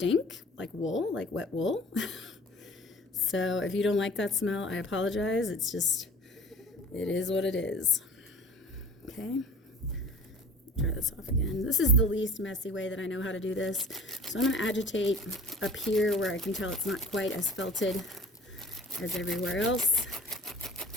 like wool, like wet wool. So if you don't like that smell, I apologize. It's just, it is what it is. Okay. Try this off again. This is the least messy way that I know how to do this. So I'm going to agitate up here where I can tell it's not quite as felted as everywhere else.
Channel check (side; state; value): both; normal; correlation 0.43